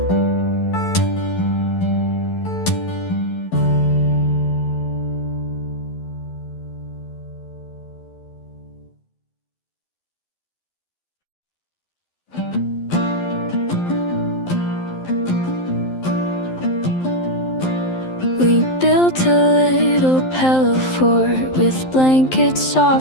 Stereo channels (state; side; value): late; right; 12 ms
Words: We built a little pillow fort with blankets